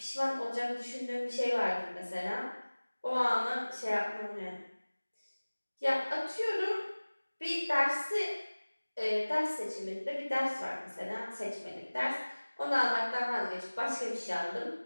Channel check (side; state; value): both; inverted; correlation -1.00